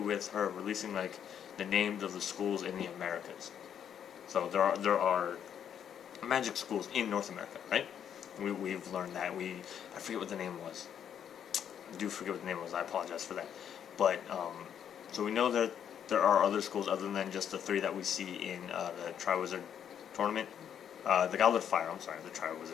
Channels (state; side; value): quieter; right; 8.8 dB